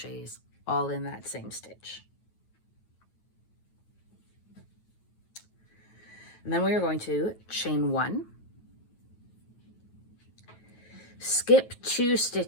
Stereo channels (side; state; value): right; late; 9.2 ms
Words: all in that same stitch. And then we are going to chain 1, skip 2